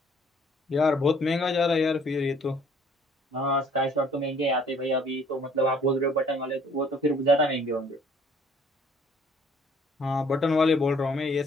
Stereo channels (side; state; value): both; normal; correlation 0.58